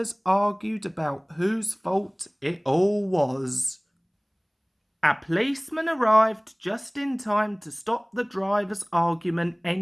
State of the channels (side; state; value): both; identical; correlation 1.00